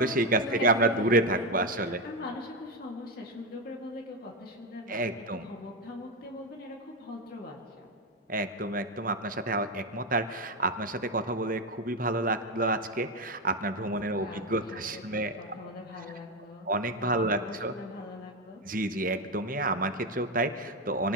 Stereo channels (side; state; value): both; normal; correlation 0.10